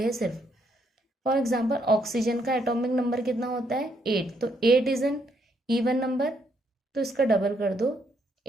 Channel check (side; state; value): both; normal; correlation 0.73